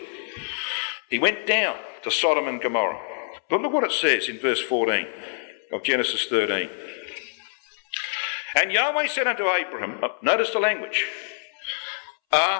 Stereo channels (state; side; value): silent; right; 61 dB below the other